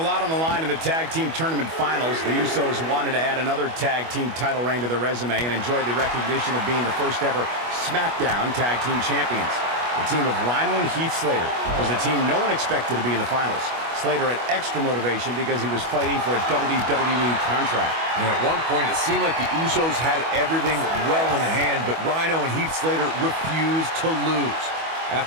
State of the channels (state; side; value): late; left; 25 ms